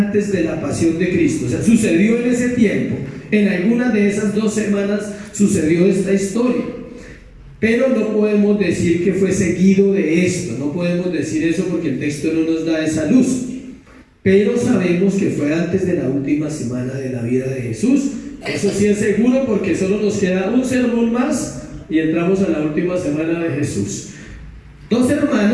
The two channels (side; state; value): both; identical; correlation 1.00